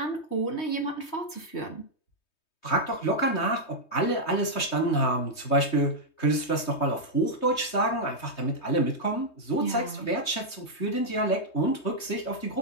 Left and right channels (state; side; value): late; right; 3.2 ms